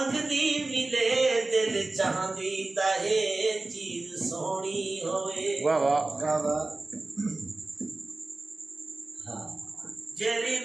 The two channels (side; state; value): left; quieter; 3.1 dB